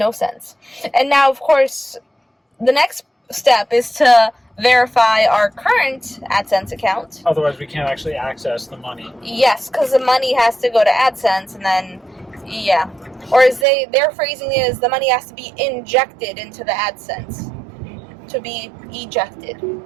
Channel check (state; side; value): drops out; left; at 13.7 s